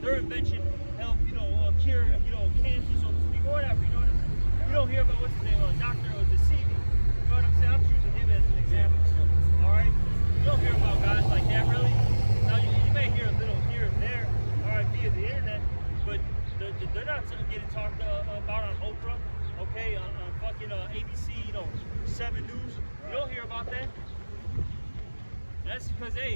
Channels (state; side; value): inverted; both; correlation -1.00